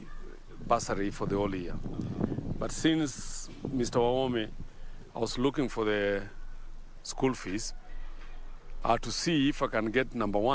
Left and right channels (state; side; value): identical; both; correlation 1.00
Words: bursary for the whole year. But since Mr. Wahome, I was looking for the school fees, I had to see if I can get number